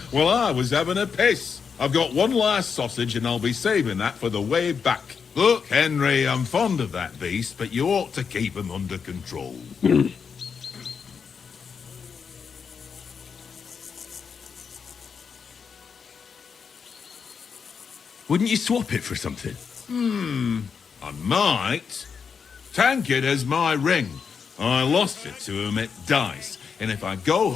while I was having a piss. I've got one last sausage and I'll be saving that for the way back. Look, Henry, I'm fond of that beast, but you ought to keep him under control. Wouldn't you swap it for something? I might. Tankard has my ring. I lost it to him at dice, and if I go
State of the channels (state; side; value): quieter; right; 6.2 dB